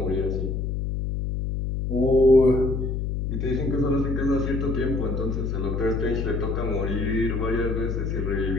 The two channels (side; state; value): left; noise; hum, 1 dB below the sound